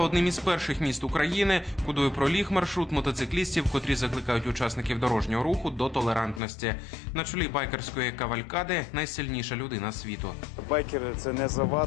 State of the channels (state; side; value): drops out; right; at 6.4 s